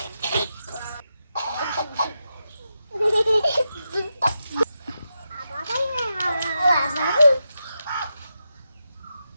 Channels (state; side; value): inverted; both; correlation -0.87